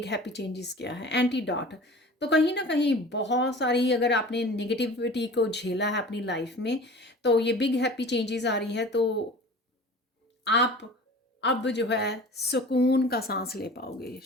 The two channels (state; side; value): normal; both; correlation 0.41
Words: हैप्पी चेंजेस क्या है। एंटीडॉट, तो कहीं ना कहीं बहुत सारी अगर आपने निगेटिविटी को झेला है अपनी लाइफ में, तो ये बिग हैप्पी चेंजेस आ रही है। तो आप अब जो है सुकून का सांस ले पाओगे,